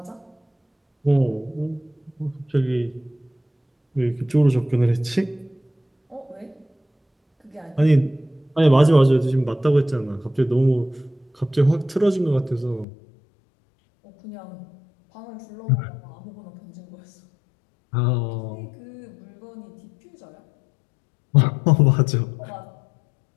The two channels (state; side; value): drops out; right; at 12.9 s